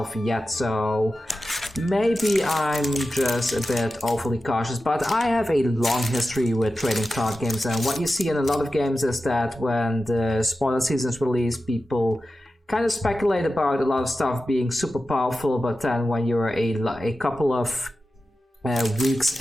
yet, so maybe I'm just a bit overly cautious, but I have a long history with trading card games, and what you see in a lot of games is that when the spoiler seasons release, people kind of speculate about a lot of stuff being super powerful, but then when you're a couple of weeks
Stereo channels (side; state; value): both; normal; correlation 0.93